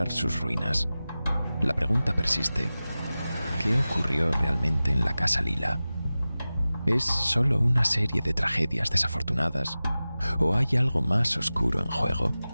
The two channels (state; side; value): inverted; both; correlation -0.96